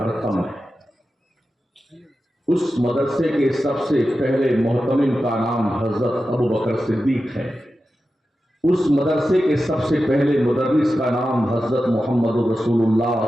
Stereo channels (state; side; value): normal; both; correlation 0.92